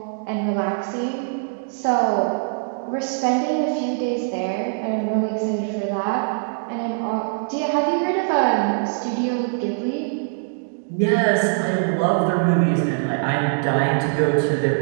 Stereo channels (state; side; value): silent; left; digital silence